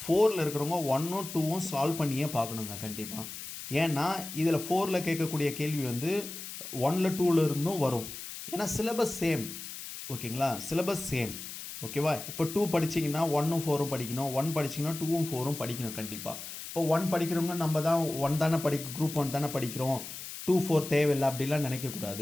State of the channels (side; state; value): left; noise; hiss, 10 dB below the sound